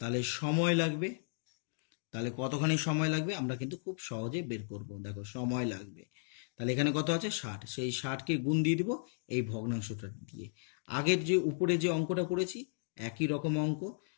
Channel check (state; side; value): silent; right; digital silence